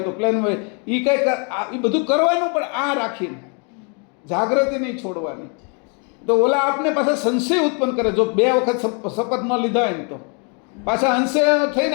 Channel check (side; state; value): right; quieter; 36.8 dB